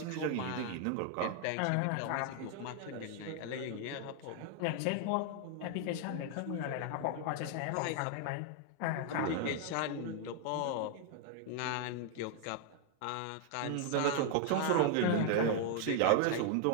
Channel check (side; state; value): both; different; correlation 0.00